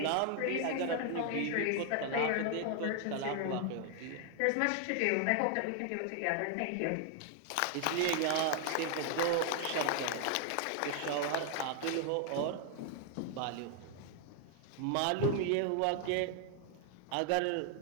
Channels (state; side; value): different; both; correlation 0.00